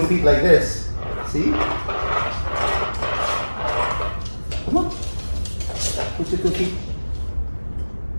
feet like this. See? Come on. Push your cookie.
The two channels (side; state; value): both; inverted; correlation -1.00